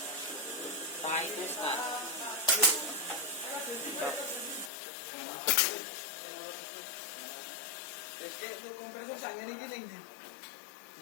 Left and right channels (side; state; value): right; drops out; at 4.7 s